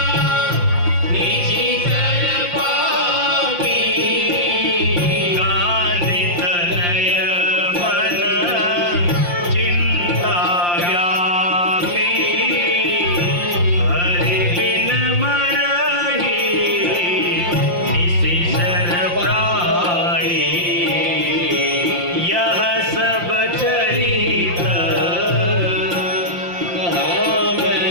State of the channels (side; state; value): left; late; 5.7 ms